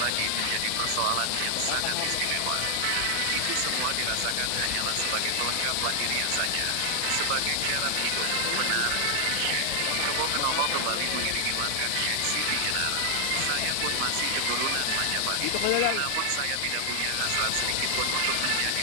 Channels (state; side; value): different; both; correlation 0.00